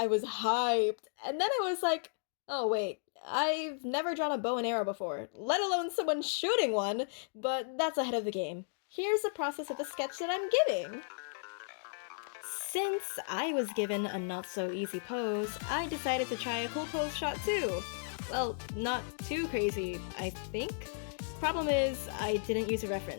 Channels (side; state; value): right; silent; digital silence